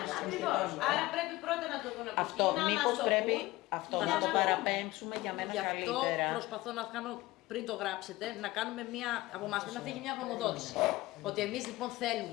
Άρα πρέπει πρώτα να το δουν. Αυτό μήπως πρέπει να το παραπέμψουμε για μένα καλύτερα. Γι' αυτό προσπαθώ να κάνω, πριν το γράψετε, να κάνουμε μία, από εμάς πρέπει να φύγει μια γνωμοδότηση. Ότι εμείς λοιπόν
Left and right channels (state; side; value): quieter; right; 19.0 dB